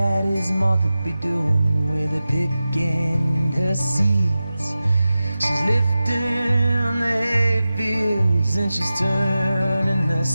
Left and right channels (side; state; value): both; inverted; correlation -0.95